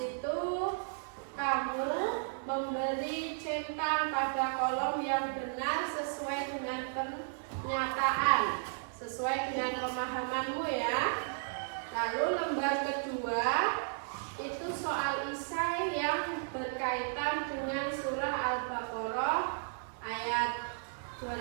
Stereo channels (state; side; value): silent; left; 55 dB below the other